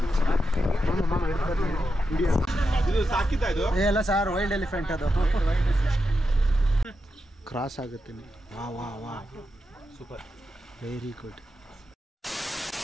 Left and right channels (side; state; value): both; normal; correlation 0.87